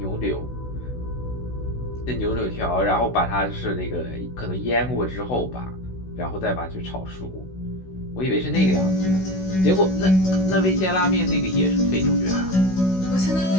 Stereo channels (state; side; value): late; right; 16 ms